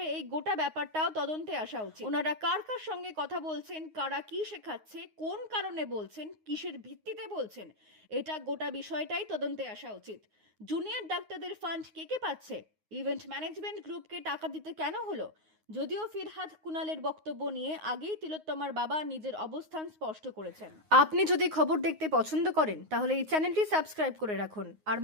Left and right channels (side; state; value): left; late; 9.5 ms